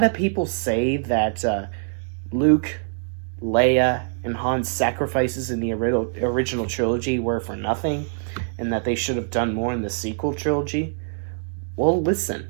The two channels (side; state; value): left; silent; digital silence